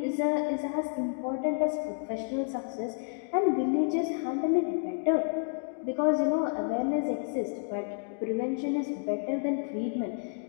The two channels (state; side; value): silent; right; digital silence